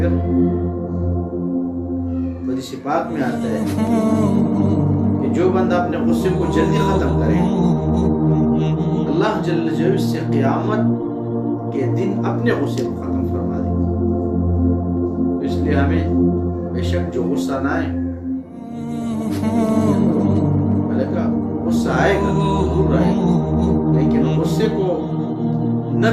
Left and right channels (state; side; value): identical; both; correlation 1.00